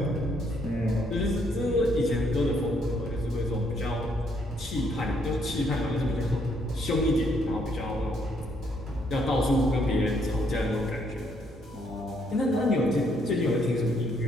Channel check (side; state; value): both; normal; correlation 0.71